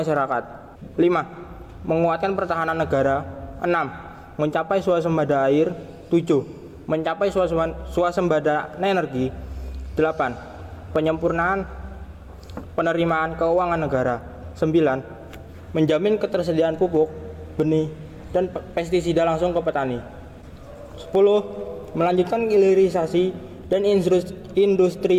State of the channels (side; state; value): both; identical; correlation 1.00